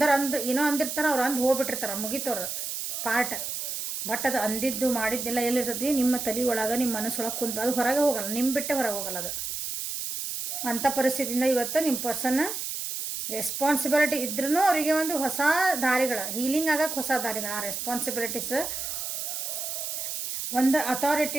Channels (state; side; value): noise; right; hiss, 4 dB below the sound